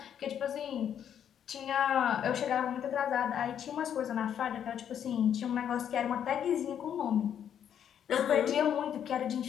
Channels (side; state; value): right; quieter; 9.1 dB